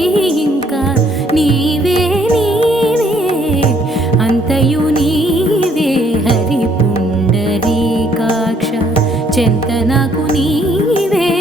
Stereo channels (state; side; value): normal; both; correlation 0.66